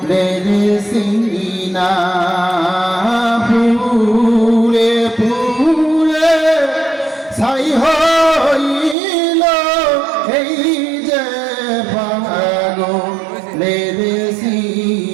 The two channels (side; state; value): left; drops out; at 9.0 s